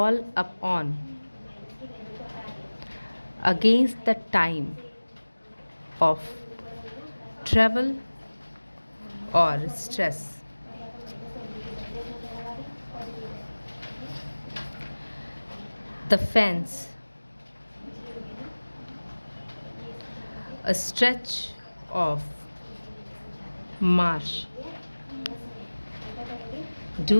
upon against the time of travel or stress. The fence, a stretch of marsh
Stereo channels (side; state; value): both; inverted; correlation -1.00